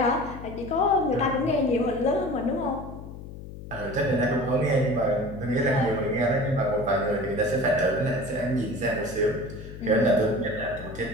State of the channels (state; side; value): noise; left; hum, 12 dB below the sound